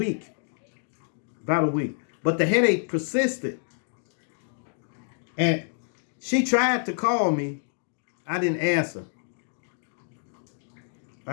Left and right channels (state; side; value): silent; right; digital silence